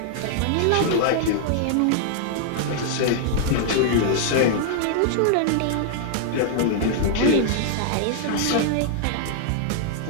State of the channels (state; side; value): different; both; correlation -0.01